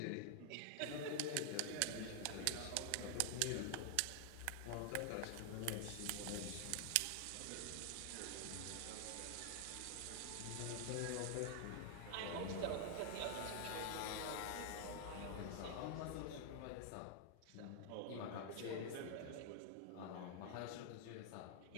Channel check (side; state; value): both; different; correlation 0.00